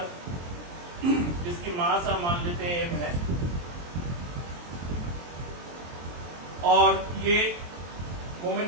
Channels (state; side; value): late; left; 23 ms